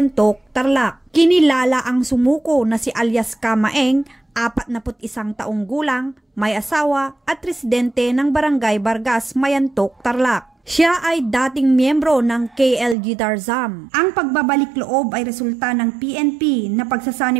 Tarlac. Kinilala ang sumuko na si alias Kamaeng, 41 taong gulang, may asawa at residente ng Barangay Vargas, Mayantok, Tarlac. Siya ay dating miyembro ng KLG Tarzam. Ang pagbabalik loob ay resulta ng PNP na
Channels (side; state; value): left; drops out; at 13.0 s